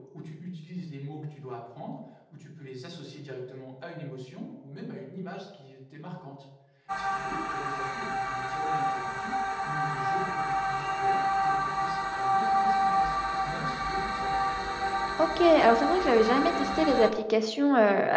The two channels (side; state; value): both; identical; correlation 1.00